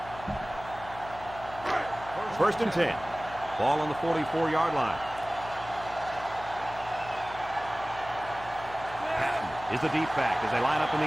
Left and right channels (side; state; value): left; noise; hum, 15 dB below the sound